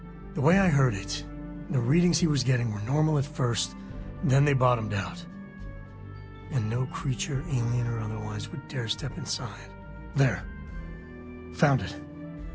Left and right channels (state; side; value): identical; both; correlation 1.00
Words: The way I heard it, the readings he was getting were normal at first, then they bottomed out. And no creature, alien or otherwise, would dare step inside. There. Found it.